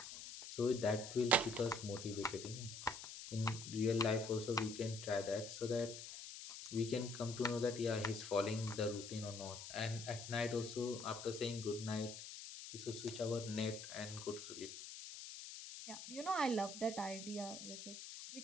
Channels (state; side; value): noise; left; hiss, 10 dB below the sound